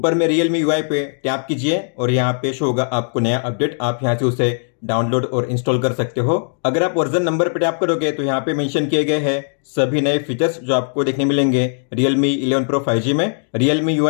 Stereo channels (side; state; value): right; silent; digital silence